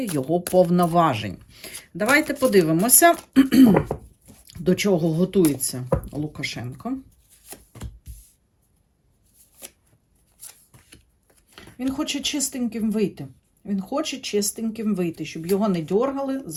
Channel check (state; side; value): identical; both; correlation 1.00